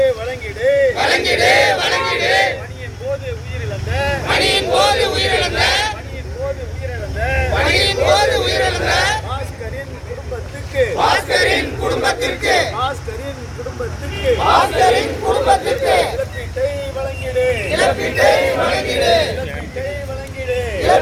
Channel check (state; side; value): identical; both; correlation 1.00